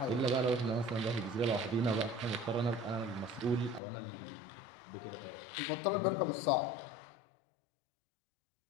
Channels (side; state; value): right; drops out; at 3.8 s